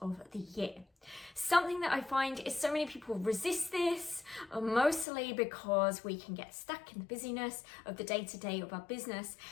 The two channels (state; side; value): drops out; right; at 5.1 s